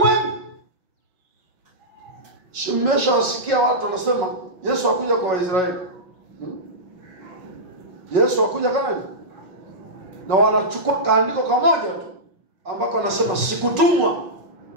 Mmeshawasikia watu wanasema Yesu hakuja kwa Waisraeli. Yesu hakuja Kanaani. Na wanachukua kaandiko kamoja tu ambako anasema sikutumwa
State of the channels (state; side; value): late; left; 5.4 ms